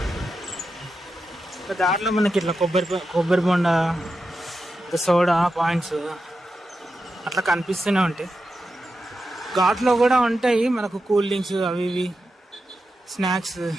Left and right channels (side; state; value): both; normal; correlation 0.89